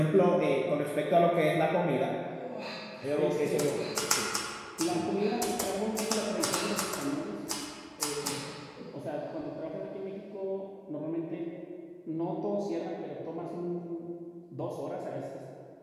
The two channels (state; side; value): identical; both; correlation 1.00